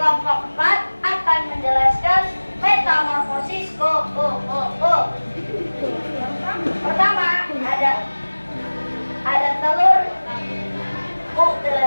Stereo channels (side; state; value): both; inverted; correlation -1.00